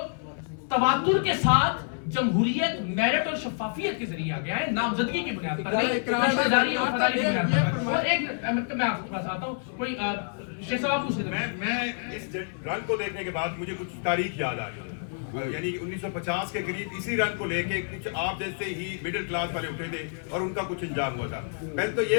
तवातुर के साथ जमहूरियत, मेरिट और शफाफियत के जरिए आ गया है, नामजदगी की बुनियाद पर नहीं, रिश्तेदारी और वफादारी की बुनियाद पर। और एक मैं आपके पास आता हूँ, कोई शेख साहब आप पूछ रहे थे। मैं इस रंग को देखने के बाद मुझे कुछ तारीख याद आ रही है। यानी 1950 के करीब इसी रंग को लेके कुछ आप जैसे ही मिडिल क्लास वाले उठे थे और उनका कुछ अंजाम हुआ था। पहले तो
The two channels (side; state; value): right; silent; 59 dB below the other